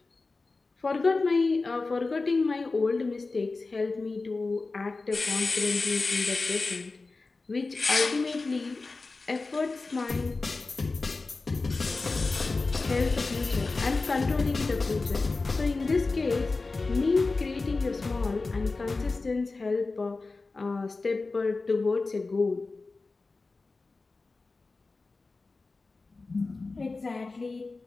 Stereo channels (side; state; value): right; quieter; 3.7 dB